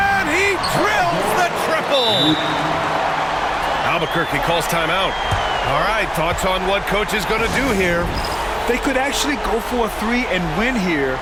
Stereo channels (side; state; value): both; identical; correlation 1.00